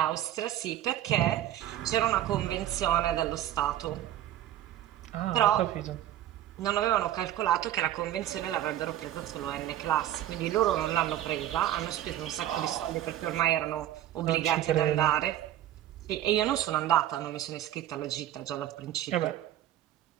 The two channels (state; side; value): quieter; left; 12.6 dB